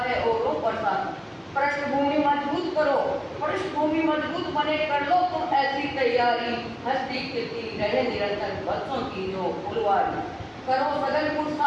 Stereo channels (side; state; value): both; identical; correlation 1.00